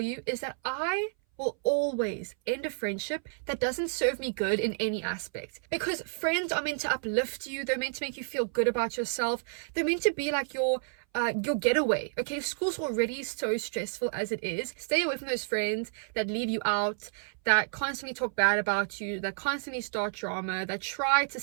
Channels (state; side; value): silent; left; 58 dB below the other